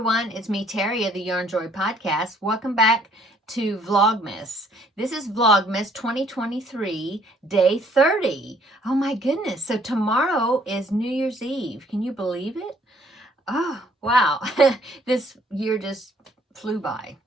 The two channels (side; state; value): both; normal; correlation 0.62